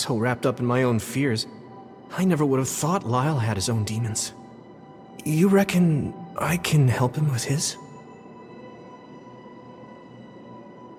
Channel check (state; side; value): identical; both; correlation 1.00